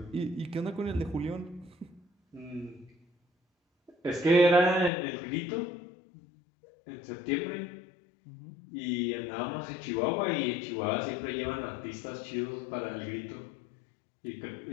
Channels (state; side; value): drops out; right; at 4.9 s